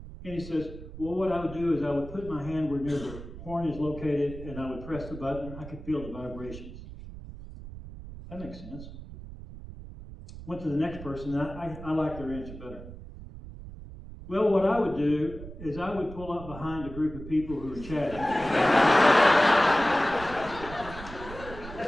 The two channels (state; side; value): noise; right; rumble, 13 dB below the sound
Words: And he says, well, what I would do is I would put my hand where near the horn is located and I would press the button. I could feel the vibrations. That makes sense. Went to the next person, and I like their answer better. Well, what I would do is I would pull up behind a group of people who are chatting.